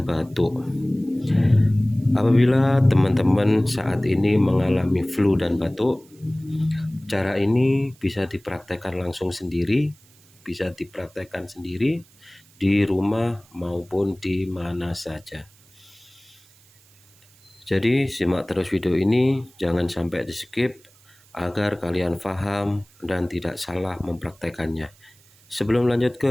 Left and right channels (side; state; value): right; noise; hiss, 29 dB below the sound